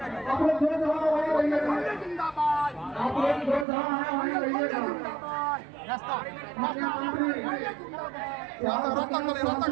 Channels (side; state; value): left; drops out; at 3.7 s